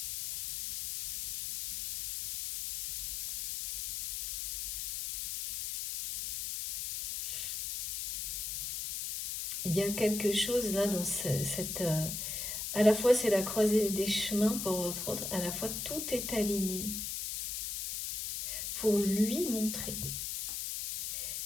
Il y a quelque chose là dans cette... à la fois, c'est la croisée des chemins pour votre autre, à la fois, tout est aligné pour lui montrer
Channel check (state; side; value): noise; left; hiss, 3 dB below the sound